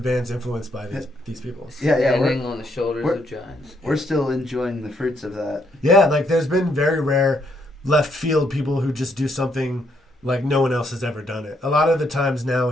bands influenced by these people. Standing on the shoulders of giants. We're still enjoying the fruits of that. Yeah, like there's been very rare left field people who just do something like no one else has ever done it. A lot of the times now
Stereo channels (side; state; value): both; normal; correlation 0.74